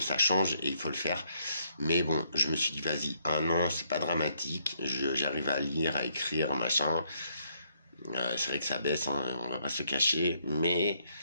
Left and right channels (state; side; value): inverted; both; correlation -0.72